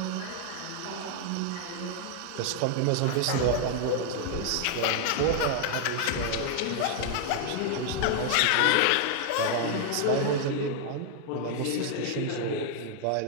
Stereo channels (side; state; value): both; different; correlation 0.00